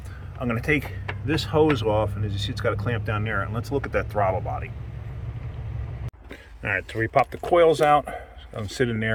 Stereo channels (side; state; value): both; identical; correlation 1.00